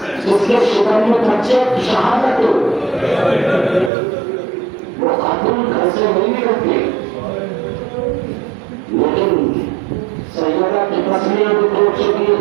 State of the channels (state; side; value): drops out; left; at 3.9 s